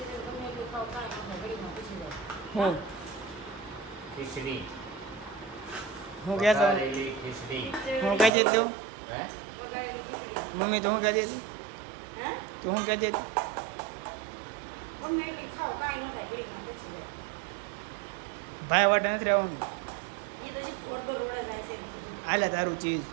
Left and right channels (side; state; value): left; drops out; at 8.3 s